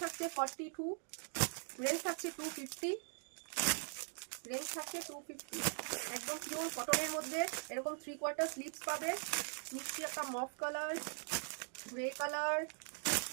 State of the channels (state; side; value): silent; left; 50 dB below the other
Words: থাকছে, 42 রেঞ্জ থাকছে 250। রেঞ্জ থাকছে 250। একদম পিওর কটনের মধ্যে এরকম 3/4 স্লিভস পাবে। মিষ্টি একটা মফ colour, grey colour,